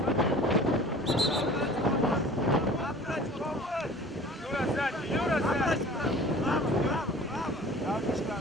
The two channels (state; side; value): normal; both; correlation 0.45